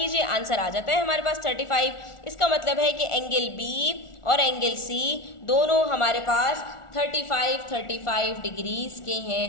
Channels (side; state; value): right; late; 1.4 ms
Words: आंसर आ जाता है हमारे पास 35। इसका मतलब है कि एंगल B और एंगल C दोनों हमारे पास 35 डिग्रीज के